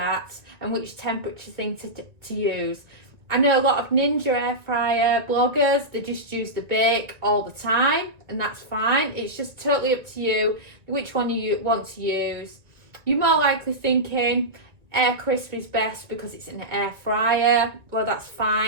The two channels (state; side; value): late; left; 1.5 ms